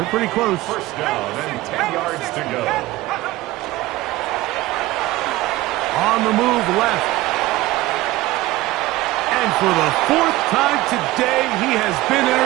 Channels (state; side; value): quieter; left; 17.9 dB